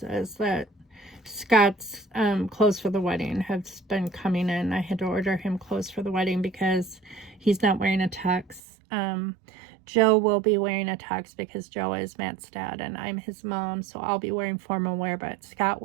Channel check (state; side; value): drops out; left; at 8.6 s